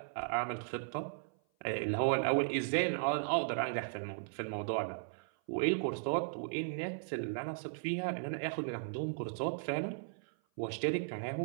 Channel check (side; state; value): left; silent; 53 dB below the other